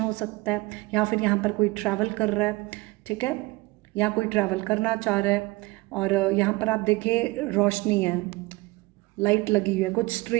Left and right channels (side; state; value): left; quieter; 22.4 dB